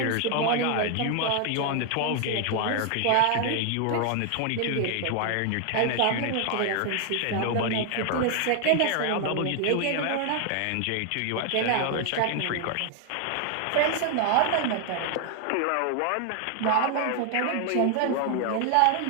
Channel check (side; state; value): both; different; correlation 0.00